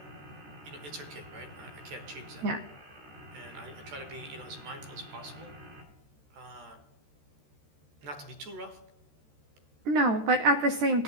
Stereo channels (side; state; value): left; late; 13 ms